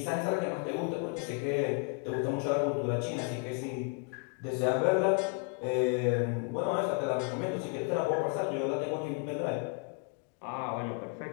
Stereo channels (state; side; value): quieter; right; 33.2 dB